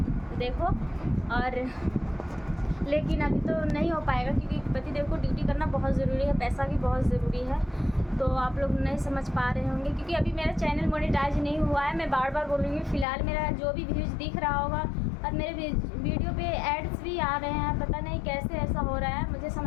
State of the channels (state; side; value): drops out; right; at 13.1 s